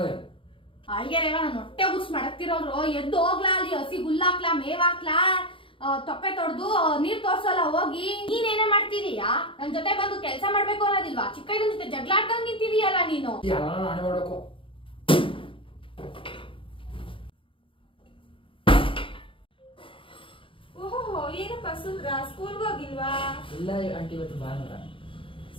ಅಳ್ಗೆರೇವ ನಾನು ಹೊಟ್ಟೆ ಉರ್ಸ್ ಮಾಡಕ್ತಿರೋರು. ಎದ್ದು ಹೋಗ್ಲಾ, ಅಲ್ಲಿ ಹಸಿ ಹುಲ್ಲಾಕ್ಲಾ, ಮೇವಾಕ್ಲಾ, ತೊಪ್ಪೆ ತೊಡ್ದು ನೀರ್ ತೋರ್ಸಲ್ಲ ಹೋಗಿ. ನೀನೇನೇ ಮಾಡ್ತಿದೀಯಾ? ನನ್ ಜೊತೆ ಬಂದು ಕೆಲಸ ಮಾಡ್ಬೇಕು ಅನ್ನೋದಿಲ್ವಾ? ಚಿಕ್ಕ ಇದನ್ ಜೊತೆ ಜಗಳ ಆಡ್ದಂಗ್ ನಿಂತಿದೀಯಲ್ಲ ನೀನು. ಮಾಡ್ಬೇಕು ಓಹೋ ಏನಪ್ಪ ಸುಂದ್ರ ಸ್ಕೂಲ್ಗೆ ಹೋಗಿಲ್ವಾ? ಇಲ್ಲ ಆಂಟಿ ಇವತ್ತು ಭಾನುವಾರ.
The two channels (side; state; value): right; late; 0.25 ms